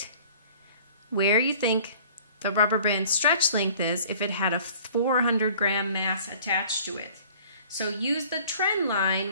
where you think the rubber band stretch length is if it had a 400 gram mass attached to it. So use the trend line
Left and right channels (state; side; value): inverted; both; correlation -0.51